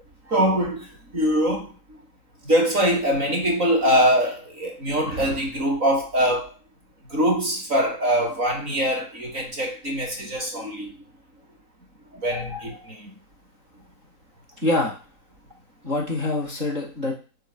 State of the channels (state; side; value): late; left; 3.9 ms